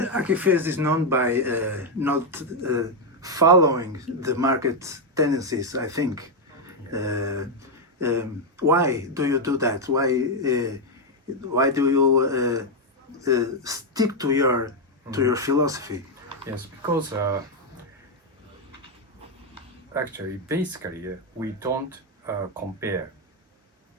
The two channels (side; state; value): both; normal; correlation 0.02